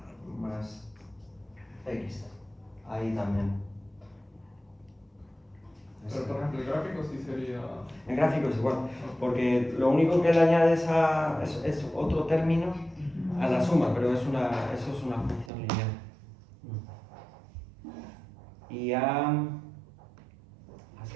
más x, ahí también. Pero por ejemplo, el gráfico sí sería... El gráfico es igual, porque lo único que le añades es otro término a la suma, pero eso es una función lineal. Y a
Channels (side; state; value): left; drops out; at 15.5 s